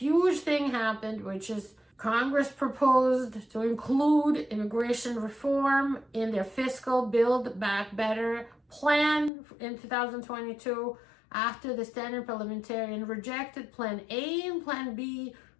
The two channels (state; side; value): drops out; right; at 9.3 s